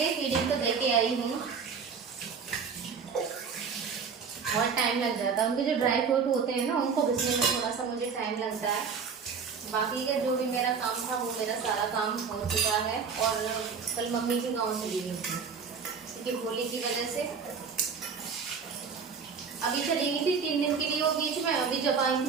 फीडिंग तो दे के आई हूँ। बहुत टाइम लग जाता है, उनके जो ड्राई फ्रूट होते हैं ना उनको घिसने में थोड़ा सा मुझे टाइम लगता है। बाकी का जो भी मेरा काम था वो मेरा सारा काम हो चुका है। और कल मम्मी के गाँव चली गई थी क्योंकि होली की वजह से। अभी चली गई थी 3 दिन के लिए वो बीच में, अभी जब आई थी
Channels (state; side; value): quieter; left; 5.9 dB